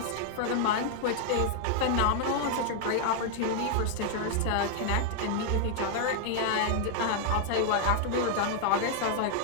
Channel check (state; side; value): different; both; correlation -0.01